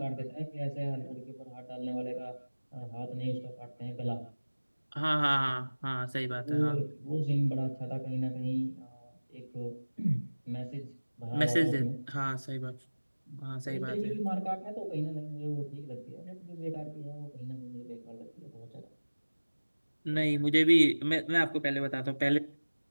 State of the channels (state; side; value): inverted; both; correlation -1.00